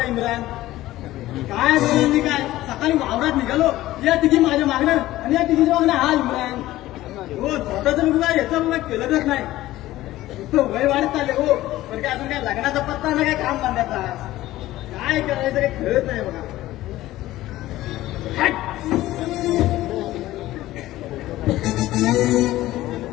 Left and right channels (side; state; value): right; quieter; 15.9 dB